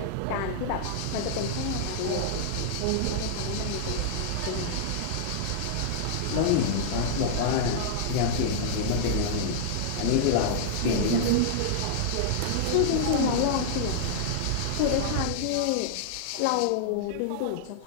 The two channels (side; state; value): both; different; correlation -0.01